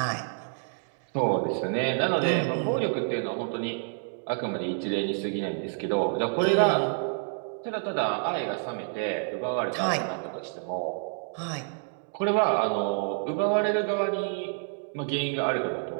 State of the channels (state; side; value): silent; left; 59 dB below the other